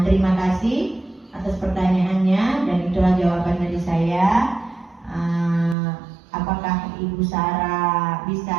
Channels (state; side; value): drops out; left; at 5.8 s